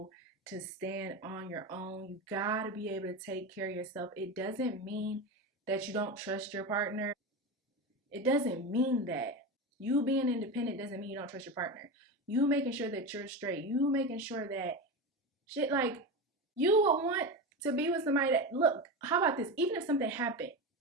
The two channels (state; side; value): normal; both; correlation 0.21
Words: to stand on your own. You gotta be able to take care of yourself. It doesn't mean that you don't trust your partner. It doesn't mean that. You being independent doesn't mean you don't trust your partner. You making sure that you're straight. You making sure that shit, like, you would want to be with somebody that, look, how about this? Even if something happened,